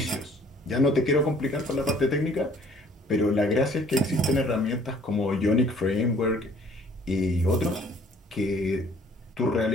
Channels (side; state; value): both; normal; correlation 0.57